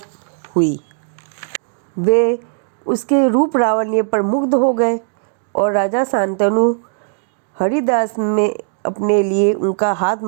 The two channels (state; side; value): silent; left; 67 dB below the other